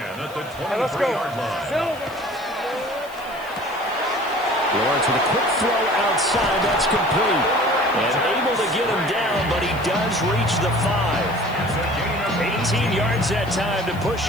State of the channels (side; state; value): left; noise; hiss, 22 dB below the sound